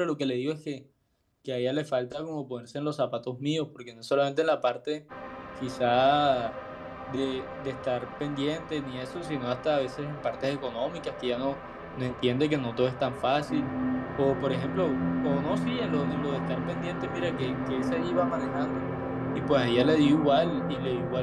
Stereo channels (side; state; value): both; identical; correlation 1.00